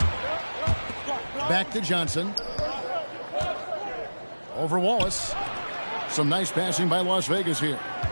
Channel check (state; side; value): inverted; both; correlation -1.00